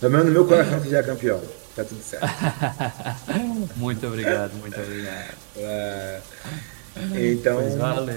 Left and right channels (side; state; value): left; silent; digital silence